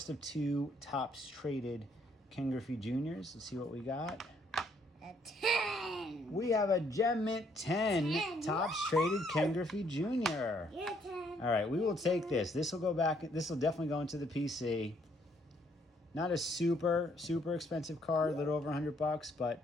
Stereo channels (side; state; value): both; normal; correlation 0.68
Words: of 2 Topps traded Ken Griffey Juniors. Let's see what we got. A 10. We have a Gem Mint 10 Topps traded Ken Griffey Jr. Yeah, 10. All right, we will take this. This will go back. This will definitely go into the PC. Not a super expensive card, a little over $100, but